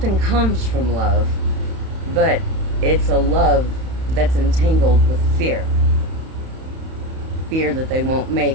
comes from love, but it's a love that's entangled with fear. Fear that they won't make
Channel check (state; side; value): late; left; 31 ms